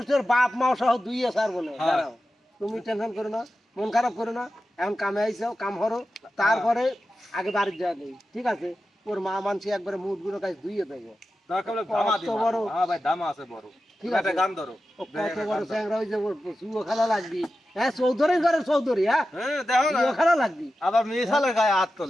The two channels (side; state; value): both; normal; correlation 0.92